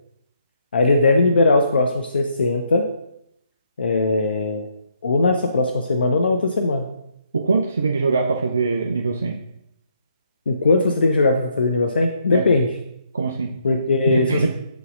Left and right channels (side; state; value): both; inverted; correlation -0.72